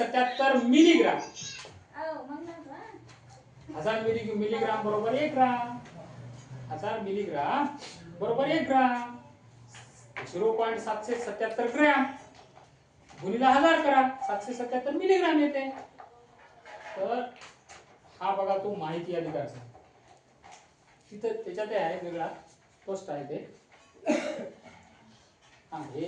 मिलीग्राम. 1000 मिलीग्राम बरोबर 1 ग्राम. 1000 मिलीग्राम बरोबर 1 ग्राम. 0.777 ग्रॅम गुणिले 1000 करा, 777 मिलीग्राम येते. तर हा बघा तो माहिती अधिकार. तिथं त्याच्यात आहे वेगळा पोस्ट आहे ते. हा हे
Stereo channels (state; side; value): identical; both; correlation 1.00